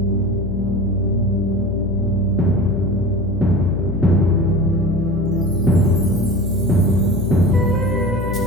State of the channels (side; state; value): left; noise; hum, 4 dB below the sound